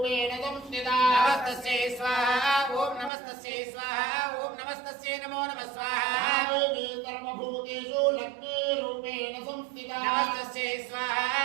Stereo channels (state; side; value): drops out; left; at 3.1 s